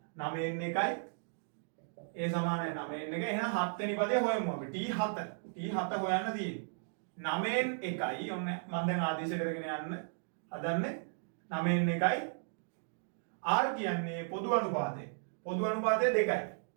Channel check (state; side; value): silent; left; digital silence